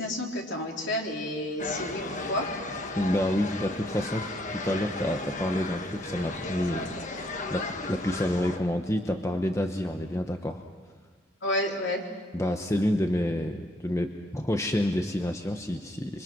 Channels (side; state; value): both; normal; correlation 0.68